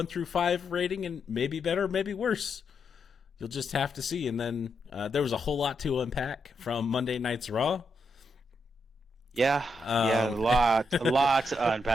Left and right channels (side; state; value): both; normal; correlation 0.81